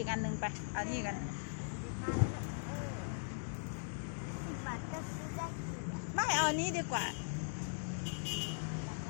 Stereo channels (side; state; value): right; silent; digital silence